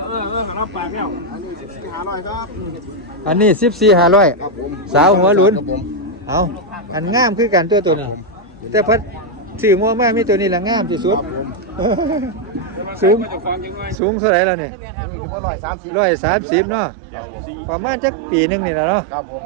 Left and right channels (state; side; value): drops out; left; at 14.0 s